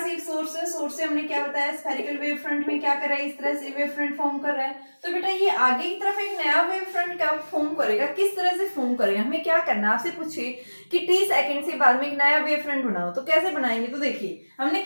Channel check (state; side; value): inverted; both; correlation -1.00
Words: एक सोर्स है, सोर्स से हमने क्या बताया, स्फेरिकल वेव फ्रंट में क्या कर रहा है, इस तरह से वेव फ्रंट फॉर्म कर रहा है। तो बेटा ये आगे की तरफ एक नया वेव फ्रंट क्या फॉर्म करेगा, किस तरह से फॉर्म करेगा, हमें क्या करना, आपसे पूछिए कि t सेकंड से बाद में एक नया वेव फ्रंट बनाओ तो कैसे बनाएंगे। तो देखिए हमने